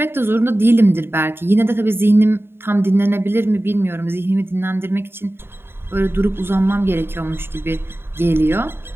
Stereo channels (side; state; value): left; late; 0.11 ms